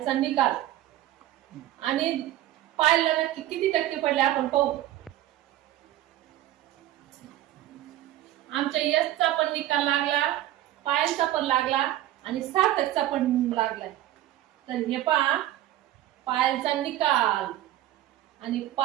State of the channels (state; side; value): quieter; left; 14.0 dB